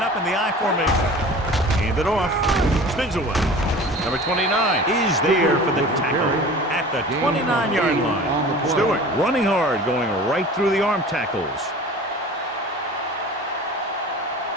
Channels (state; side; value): normal; both; correlation 0.41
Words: up in the I formation. Hand it off. Spins away. Number 29 is there for the tackle at the 29-yard line. Stewart running hard, going right through the arm tackles.